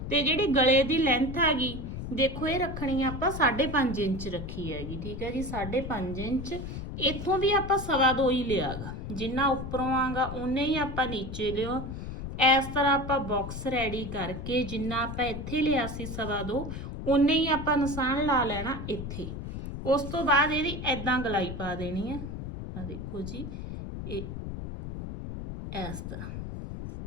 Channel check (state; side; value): noise; left; rumble, 7 dB below the sound